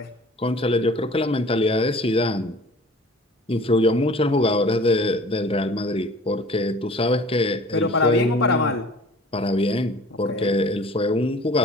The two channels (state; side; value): normal; both; correlation 0.47